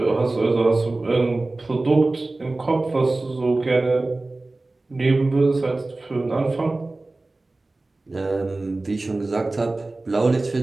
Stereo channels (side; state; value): left; quieter; 3.1 dB